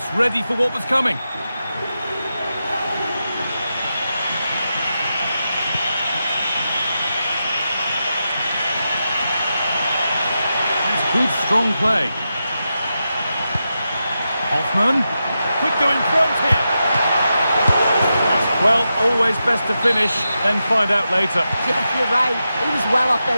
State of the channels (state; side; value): inverted; both; correlation -0.89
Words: ready for what was coming. Good, strong play. Hoffmann. Could go in front here. Well, always best to finish, then find out later. Yeah, you're right. He was well off